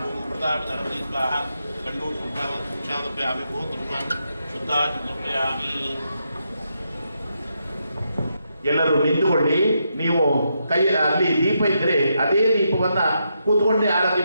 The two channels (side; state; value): both; inverted; correlation -0.82